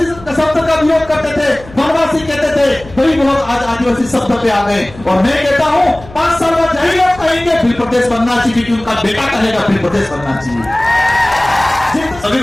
शब्द का विरोध करते थे, वनवासी कहते थे, वही लोग आज आदिवासी शब्द पे आ गए। और मैं कहता हूं 5 साल बाद यही लोग कहेंगे बिल प्रदेश बनना चाहिए, क्योंकि उनका बेटा कहेगा बिल प्रदेश बनना चाहिए। सभी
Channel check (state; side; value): noise; left; hum, 19 dB below the sound